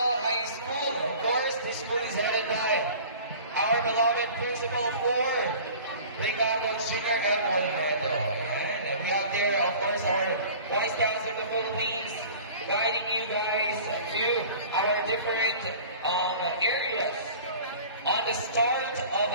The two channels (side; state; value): both; inverted; correlation -0.43